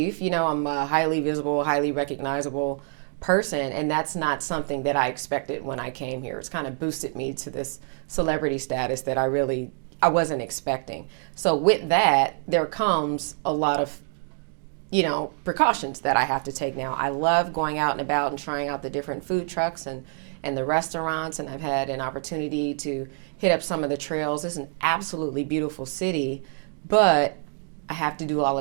I'm a highly visible, highly recognizable person, and that's not something that I expected when I came here. It's kind of boosted me to this celebrity status that I wasn't expecting. So with that, there comes a lot of, precautions that I have to take now. I love going out and about and trying out the different food trucks and the restaurants, and I've had an opportunity to hit up some of the trails. It's an absolutely beautiful city, but I have to do all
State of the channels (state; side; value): silent; left; 56 dB below the other